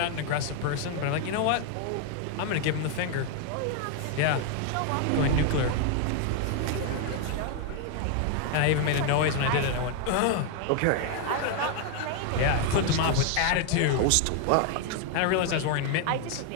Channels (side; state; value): both; different; correlation 0.00